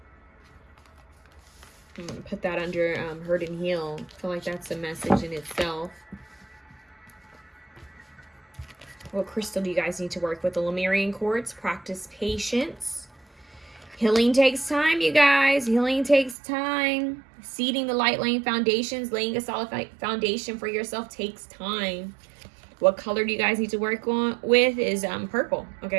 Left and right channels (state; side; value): drops out; left; at 16.4 s